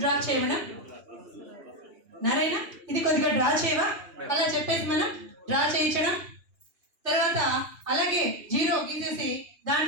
చేయడం. నారాయణ ఇది కొద్దిగా డ్రా చేయవా, అలా చెప్పేసి మనం డ్రా చేయించడం. తర్వాత అలాగే జీరో గీసేసి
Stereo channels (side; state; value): left; late; 2.9 ms